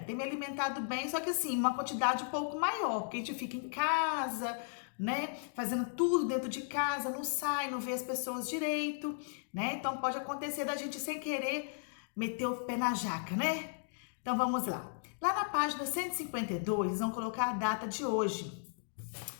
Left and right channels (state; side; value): silent; right; digital silence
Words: bem, só que assim, uma quantidade um pouco maior, porque a gente fica em casa, né, fazendo tudo dentro de casa, não sai, não vê as pessoas direito, né, então pode acontecer da gente sem querer meter o pé na jaca, né? Então vamos lá. Lá na página 152, vão colocar a data de hoje,